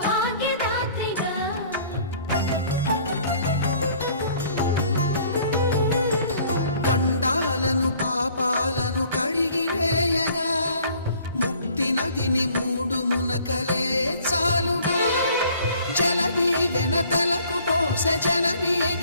గండాలను పాపాలను కడిగివేయగా ముక్తి నదిని మూడు మునకలే చాలుగా జలది వెనతలకు పోసె జనని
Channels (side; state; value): both; inverted; correlation -0.55